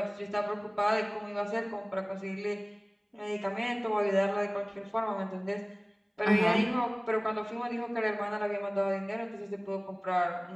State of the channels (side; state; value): both; identical; correlation 1.00